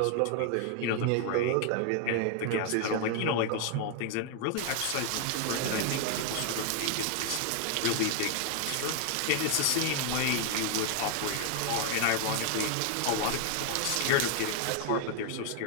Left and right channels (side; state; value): both; different; correlation 0.00